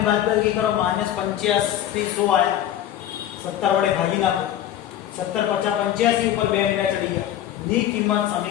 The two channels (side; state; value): right; quieter; 11.6 dB